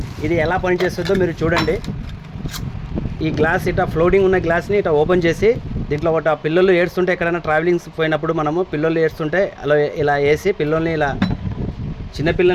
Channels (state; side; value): identical; both; correlation 1.00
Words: ఇది ఎలా పనిచేస్తుందో మీరు చూడండి. ఈ గ్లాస్ ఇట్లా ఫ్లోటింగ్ ఉన్న గ్లాస్ని ఇట్లా ఓపెన్ చేసి దీంట్లో ఒకటి పిల్లలు ఏడుస్తుంటే, ఎక్కడైనా ట్రావెలింగ్స్ పోయినప్పుడు మనము పిల్లలు ఏడుస్తుంటే అలా ఇలా వేసి పిల్లల్ని ఇలా